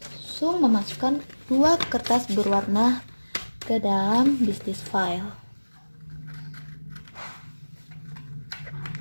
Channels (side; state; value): both; inverted; correlation -1.00